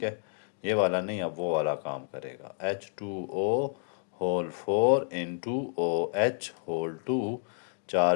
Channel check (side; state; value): right; silent; digital silence